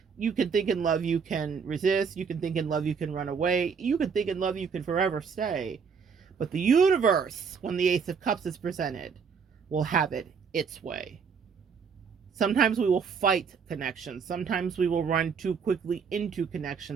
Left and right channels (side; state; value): left; quieter; 6.1 dB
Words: You can think in love, you can resist. You can think in love, you can run away. You can think in love, you can forever stay. But the universe, when the Ace of Cups is presented, will have it its way. Sometimes we will fight connections. Sometimes we will run too quickly into